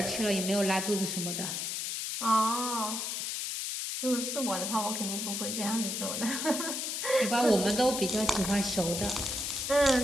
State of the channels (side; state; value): left; noise; hiss, 3 dB below the sound